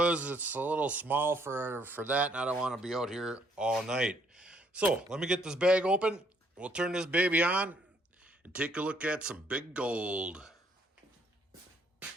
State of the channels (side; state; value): both; normal; correlation 0.67